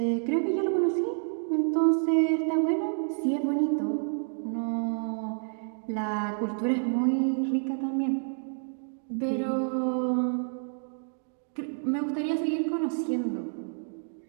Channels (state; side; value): silent; left; digital silence